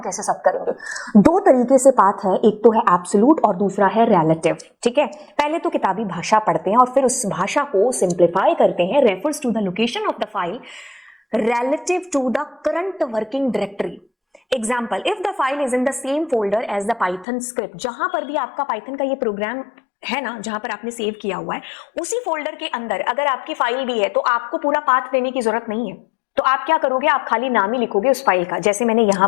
कैसे सेट करेंगे? दो तरीके से पाथ है, एक तो है एब्सोल्यूट और दूसरा है रिलेटिव। ठीक है, पहले तो किताबी भाषा पढ़ते हैं और फिर उस भाषा को सिंप्लीफाई करते हैं। Refers to the location of the file relative to the current working directory. Example, if the file is in the same folder as the Python script, जहां पर भी आपका पाइथन का ये प्रोग्राम है ना, जहां पर आपने सेव किया हुआ है, उसी फोल्डर के अंदर अगर आपकी फाइल भी है तो आपको पूरा पाथ देने की जरूरत नहीं है। तो आप क्या करोगे, आप खाली नाम ही लिखोगे उस फाइल का। जैसे मैंने यहां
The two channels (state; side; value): drops out; right; at 17.2 s